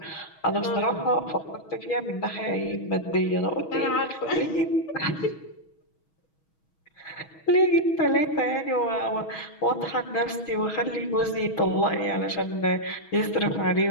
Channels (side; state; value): right; late; 6.3 ms